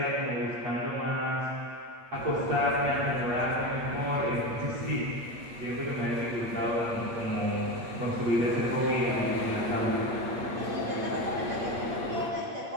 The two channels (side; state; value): left; late; 8.6 ms